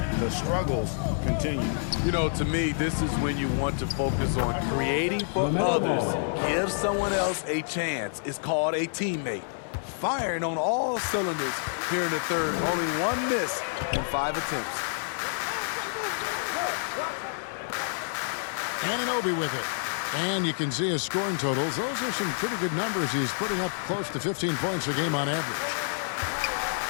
the struggles continue. You know, to me, this is when you want to focus on creating for others. Give someone else a chance. It's called a teammate. Firing on all cylinders here in the third. Only one miss in 5 attempts. Anunoby with it. And you can see his scoring totals. Those are some pretty good numbers. He's putting up close to 15 points a game on average.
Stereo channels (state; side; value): silent; right; 59 dB below the other